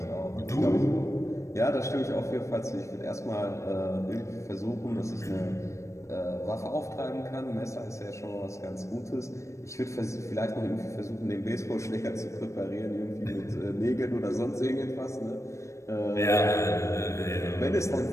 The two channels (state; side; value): late; right; 0.15 ms